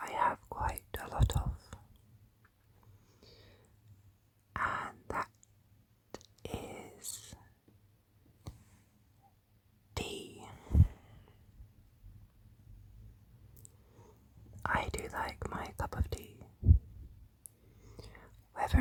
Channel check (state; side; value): identical; both; correlation 1.00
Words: have quite a lot of, and that is tea. I do like my cup of tea,